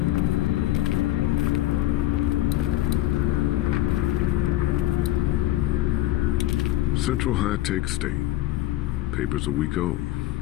Central High-Tech State. Paper's a week old.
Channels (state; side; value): quieter; right; 15.4 dB